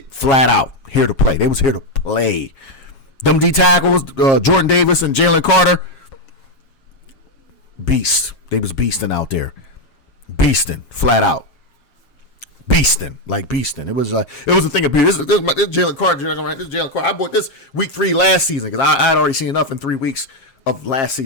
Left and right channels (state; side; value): late; right; 7.4 ms